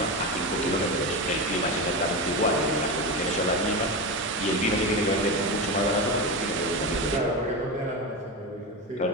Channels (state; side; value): normal; both; correlation 0.19